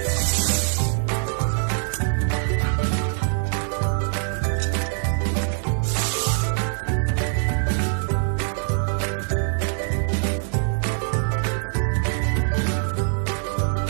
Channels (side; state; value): left; silent; 63 dB below the other